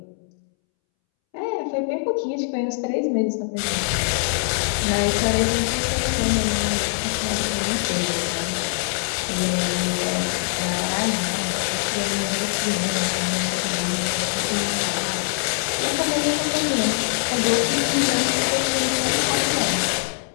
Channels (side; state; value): right; silent; 64 dB below the other